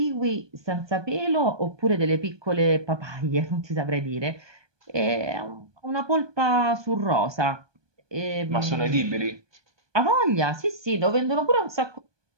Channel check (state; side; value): late; left; 1.2 ms